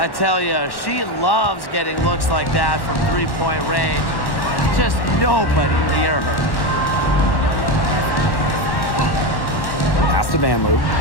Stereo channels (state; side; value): late; right; 1.1 ms